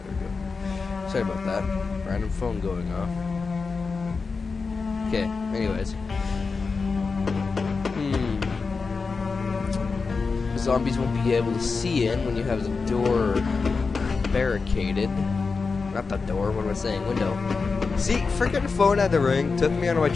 we go. Sorry about that. Random phone going off. Okay, anyways. The zombies won't be able to see in when you have the door barricaded. Not the door, what am I saying? Window. See, freaking phone had to ring. Took me out of my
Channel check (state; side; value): quieter; right; 4.6 dB